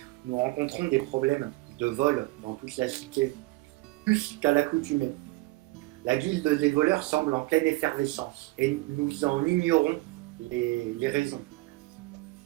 Nous rencontrons des problèmes de vol dans toute la cité, plus qu'à l'accoutumée. La guilde des voleurs semble en pleine effervescence et nous en ignorons les raisons.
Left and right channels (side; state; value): left; quieter; 21.8 dB